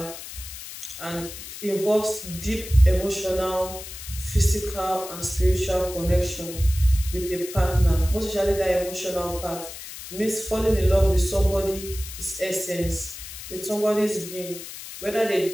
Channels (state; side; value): noise; left; hiss, 12 dB below the sound